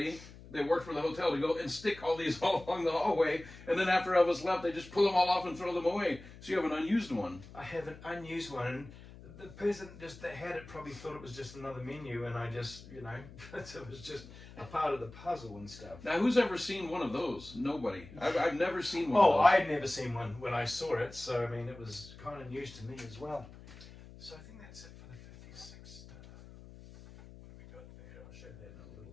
that worked for the hotel to go and stick all these all along the hallway, and then after Elvis left, they just pull them all off and throw them away. So you have an unused one. I have an unused one, and the person that had it probably thought it was just another menu, and I just, it was just a part of the puzzle and stuff. Now, who's ever seen one of those? Nobody. I've never seen one. Oh, I had never seen one when I saw it, so I mean, it was kind of news to me as well. So I think that's it for the 56. What do we got there? I'll show that in a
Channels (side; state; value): left; noise; hum, 18 dB below the sound